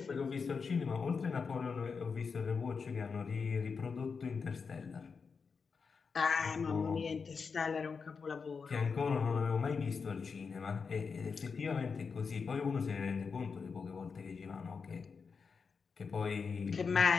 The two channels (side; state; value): right; quieter; 5.4 dB